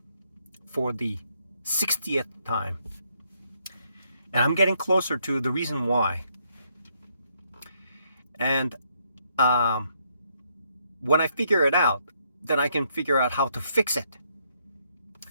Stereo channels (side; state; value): both; inverted; correlation -0.74